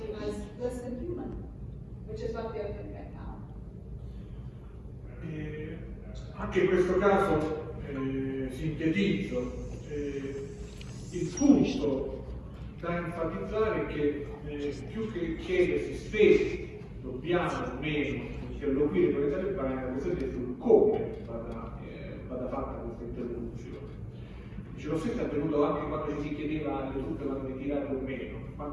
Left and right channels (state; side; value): identical; both; correlation 1.00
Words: as less than human, which is what they are doing right now. Anche in questo caso sintetizzo, il punto da enfatizzare è che più che chiedersi se dobbiamo o meno interloquire con i talebani, la questione è sul come vada fatta questa interlocuzione. Dice, lo stesso è avvenuto anche quando ci si chiedeva le truppe vanno ritirate o meno,